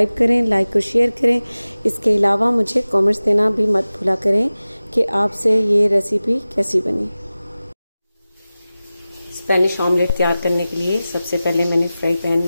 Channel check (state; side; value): inverted; both; correlation -0.96